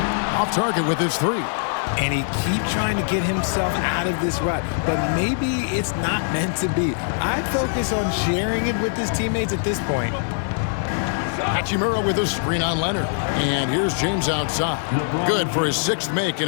Off target with his 3. And he keeps trying to get himself out of this rut, but maybe it's not meant to be. I'd focus on sharing it with his teammates at this point. Hachimura with a screen on Leonard. And here's James outside. Good for his 6th make,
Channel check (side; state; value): right; silent; digital silence